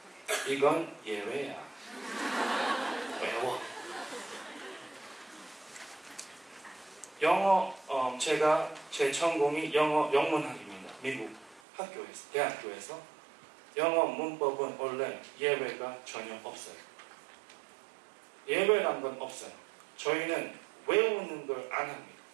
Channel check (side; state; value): left; drops out; at 11.6 s